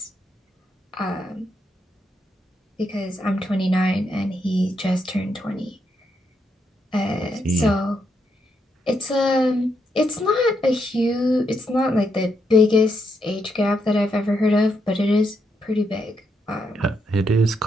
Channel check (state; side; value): normal; both; correlation 0.79